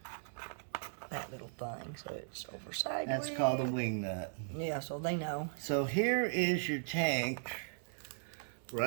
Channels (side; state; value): left; silent; 53 dB below the other